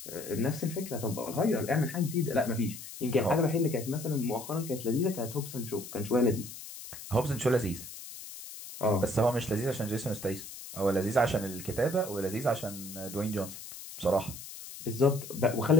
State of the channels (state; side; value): noise; left; hiss, 12 dB below the sound